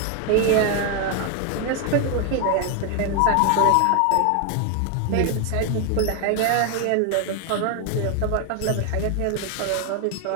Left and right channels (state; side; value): different; both; correlation 0.01